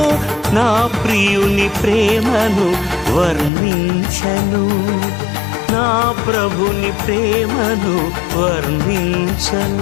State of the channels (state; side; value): drops out; right; at 3.5 s